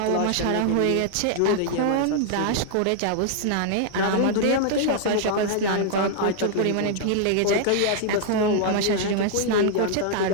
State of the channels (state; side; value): different; both; correlation -0.01